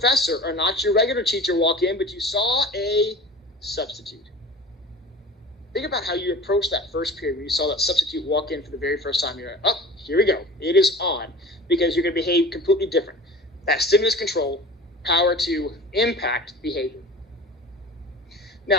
or not your regular teacher walk in, but you saw a substitute? Think about how you approached that first period when you saw that substitute walk in for the very first time. You're like, oh, here we go. It is on, because you're going to behave completely different. That stimulus control, power to impact behavior.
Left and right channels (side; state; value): both; normal; correlation 0.39